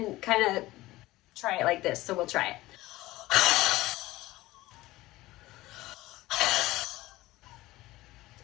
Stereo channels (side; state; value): right; quieter; 18.1 dB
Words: kind of try it like this. So we'll try it.